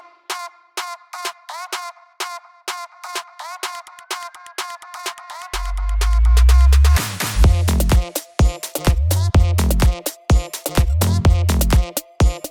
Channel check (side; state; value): both; identical; correlation 1.00